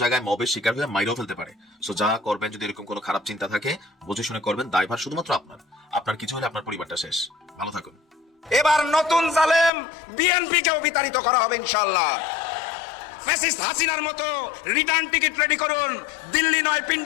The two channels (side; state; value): right; drops out; at 9.7 s